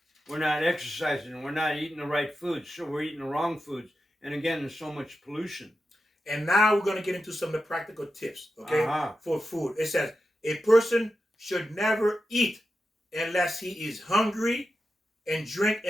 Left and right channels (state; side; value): normal; both; correlation 0.90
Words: We're not exercising. We're not eating the right foods. So we're eating the wrong foods. And again, there's so much pollution. And now we're going to get into some of the practical tips, okay, Uh-huh. for food. It says a person should never eat unless he is hungry and drink